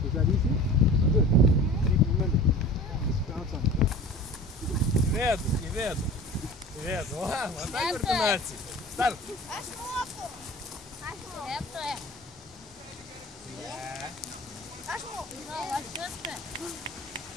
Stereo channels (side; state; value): both; normal; correlation 0.40